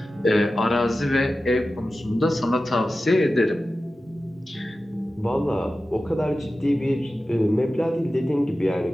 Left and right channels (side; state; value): both; normal; correlation 0.94